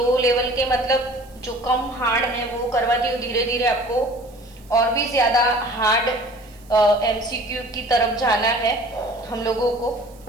लेवल के, मतलब जो कम हार्ड है वो करवाती हूँ। धीरे धीरे आपको और भी ज्यादा हार्ड एमसीक्यू की तरफ जाना है हम लोगों को।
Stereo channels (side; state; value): right; noise; hiss, 27 dB below the sound